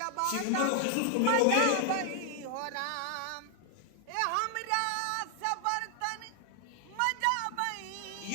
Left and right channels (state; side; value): different; both; correlation 0.00